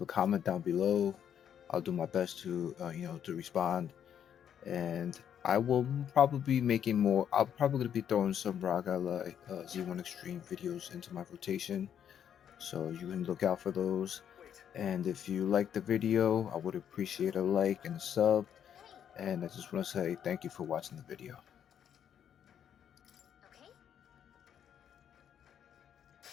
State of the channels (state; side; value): quieter; right; 9.1 dB